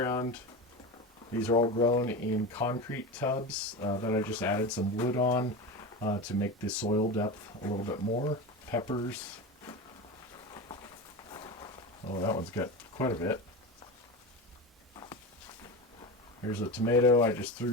These are all grown in concrete tubs that I just added some wood on to make the soil depth a little bit more. Peppers. Oh, that one's got quite a bit. Here's a tomato. I just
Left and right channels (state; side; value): normal; both; correlation 0.24